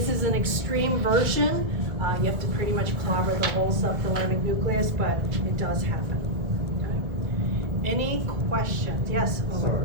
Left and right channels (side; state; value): left; late; 2.3 ms